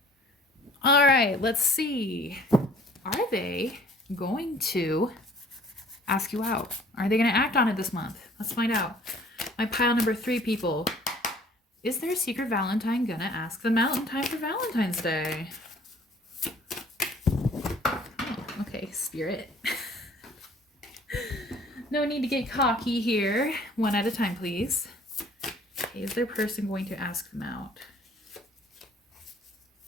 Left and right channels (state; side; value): normal; both; correlation 0.54